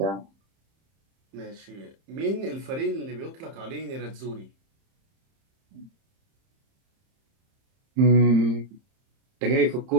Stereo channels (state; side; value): late; left; 30 ms